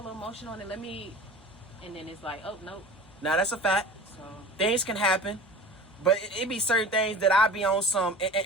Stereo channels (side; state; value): both; normal; correlation 0.38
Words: little emotion on it. Let me, and then it's like, oh nope. Now that's a fact. So Things can happen, but it be certain things that I be on some.